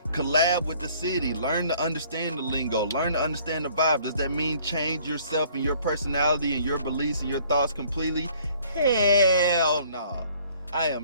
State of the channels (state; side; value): inverted; both; correlation -0.58